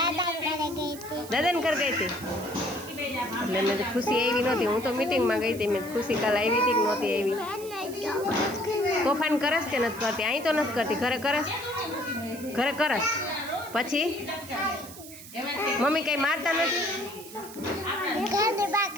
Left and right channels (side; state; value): right; noise; hiss, 15 dB below the sound